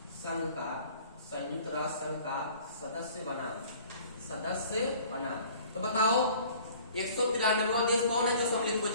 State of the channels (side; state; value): both; inverted; correlation -0.50